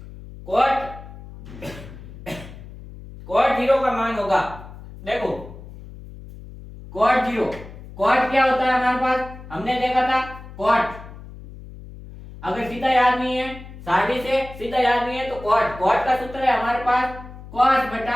cot 0 का मान होगा, देखो cot क्या होता है हमारे पास, हमने देखा था cot, अगर सीधा याद नहीं है, सारणी से सीधा याद नहीं है तो cot का सूत्र है हमारे पास cos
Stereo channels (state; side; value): noise; left; hum, 15 dB below the sound